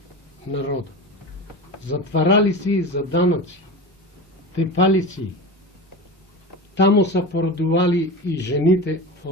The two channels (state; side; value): normal; both; correlation 0.28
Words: народа. Затварали си за данъци, тепали си. Тамо са породували и жените